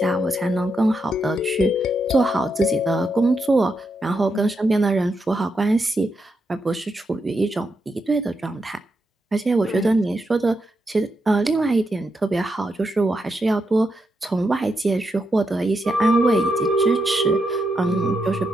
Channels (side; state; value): both; normal; correlation 0.83